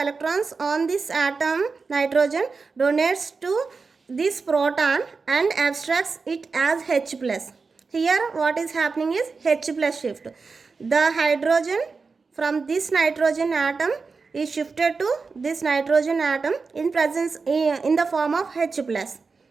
on this atom nitrogen donates to this proton and abstracts it as H plus. Here what is happening is H plus shift. The hydrogen from this nitrogen atom is shifted to this nitrogen atom in the form of H plus.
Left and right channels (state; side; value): quieter; left; 4.6 dB